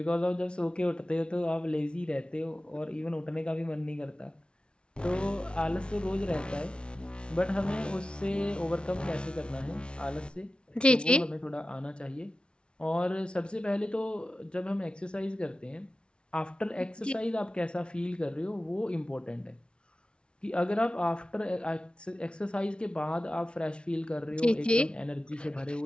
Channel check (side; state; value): right; late; 0.057 ms